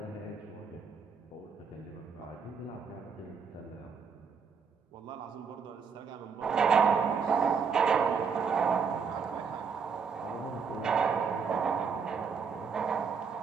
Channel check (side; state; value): left; quieter; 5.9 dB